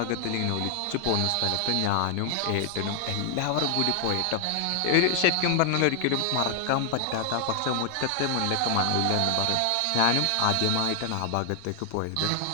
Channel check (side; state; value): both; different; correlation 0.00